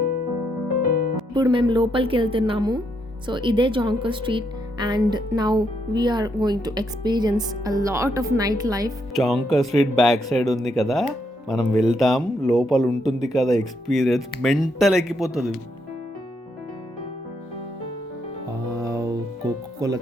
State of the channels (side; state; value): both; normal; correlation 0.77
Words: ఇప్పుడు మేము లోపలికి వెళ్తున్నాము. సో ఇదే Jonker street and now we are going to experience a lot of night life. Jonker street back side ఉంది కదా, మనం వెళ్తాం. లోపల ఉంటుంది కదా ఎక్స్పీరియన్స్, మెంటల్ ఎక్కిపోతుంది. కోకోకోలా